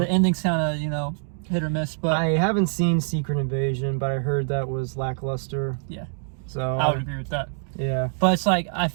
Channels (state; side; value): silent; left; digital silence